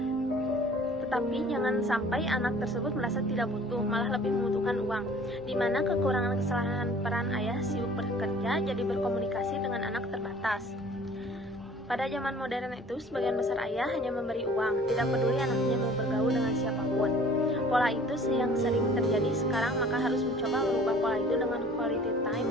Tetapi jangan sampai anak tersebut merasa tidak butuh, malah lebih membutuhkan uang, di mana kekurangan kesalahan peran ayah sibuk bekerja jadi berkomunikasi dengan anak terbatas. Pada zaman modern itu, sebagian besar ayah hanya memberi uang, tidak peduli anaknya mau bergaul dengan siapapun. Pola itu yang sering terjadi sekarang, maka harus mencoba merubah pola itu dengan quality time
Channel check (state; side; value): normal; both; correlation 0.50